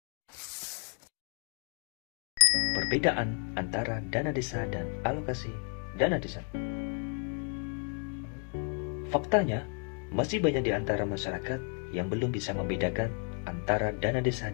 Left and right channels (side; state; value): right; quieter; 38.6 dB